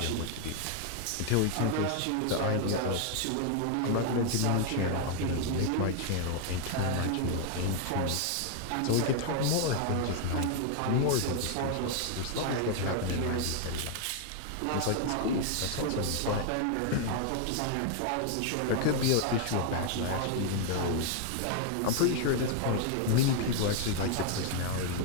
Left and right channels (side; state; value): both; different; correlation 0.00